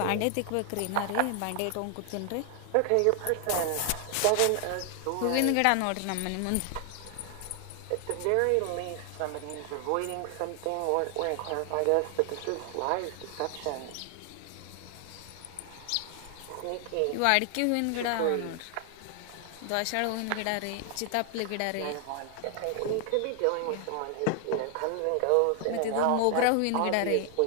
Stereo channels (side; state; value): both; different; correlation 0.00